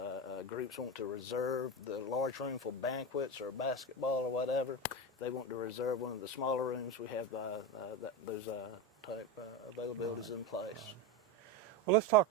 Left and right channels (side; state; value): both; normal; correlation 0.17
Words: groups want to reserve the large room for banquets or basketball or whatever, if they want to reserve one of the smaller rooms, we have those type availabilities in place. Well, let's talk